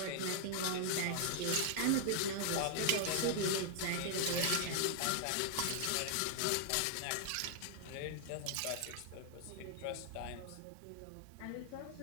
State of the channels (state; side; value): different; both; correlation 0.00